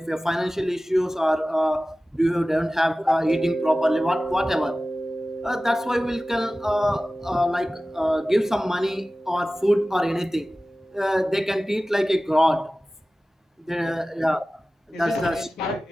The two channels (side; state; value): both; normal; correlation 0.96